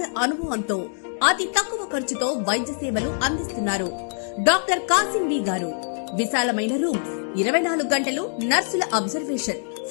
అనుభవంతో అతి తక్కువ ఖర్చుతో వైద్య సేవలు అందిస్తున్నారు. డాక్టర్ కాసిం బి గారు. విశాలమైన రూమ్స్, 24 గంటలు నర్సుల observation,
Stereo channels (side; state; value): right; silent; digital silence